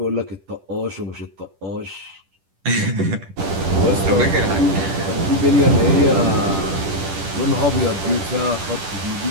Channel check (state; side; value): late; left; 10 ms